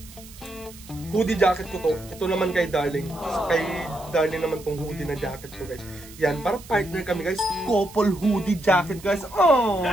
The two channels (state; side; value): noise; right; hiss, 19 dB below the sound